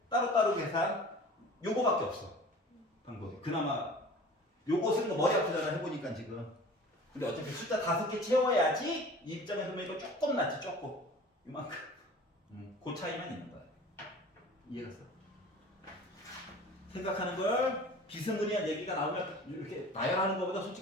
따로따로 계산 요거밖에 없어 방법이. 그나마 요거 쓰는 거 머리 아프잖아 해보니까 지금. 근데 어차피 숫자 5개 채워야지 이 입장에서 보니까 조금 낫지 조금 이만큼. 그 차이만 있는 거야. 이해갔어? 생각하는 걸 비스무리한 얘기가 나오면 이렇게 나열하는 것보다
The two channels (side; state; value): both; normal; correlation 0.42